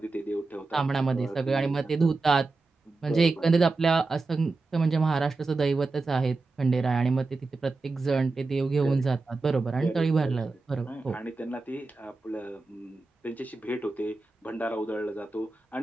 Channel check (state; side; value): quieter; left; 3.6 dB